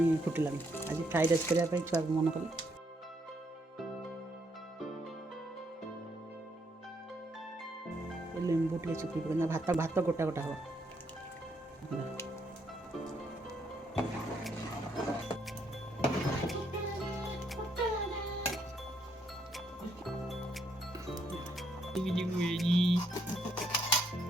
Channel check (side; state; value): both; normal; correlation 0.73